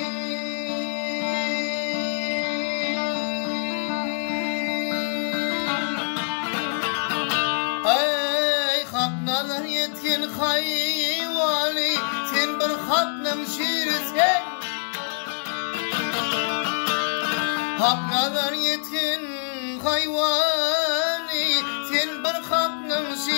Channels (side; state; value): right; silent; digital silence